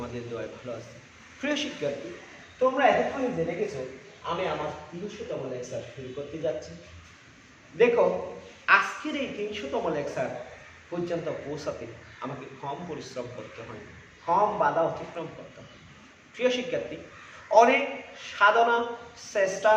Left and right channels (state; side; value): identical; both; correlation 1.00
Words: দোয়ায় ভালো আছি। প্রিয় শিক্ষার্থী, তোমরা এতক্ষণে জেনে গেছো আমি আমার 300তম লেকচার শুরু করতে যাচ্ছি। দেখো, আজকের এই 300তম লেকচার পর্যন্ত পৌঁছাতে আমাকে কম পরিশ্রম করতে হয়, কম বাধা অতিক্রম করতে হয়। প্রিয় শিক্ষার্থী, অনেক সাধনা, চেষ্টা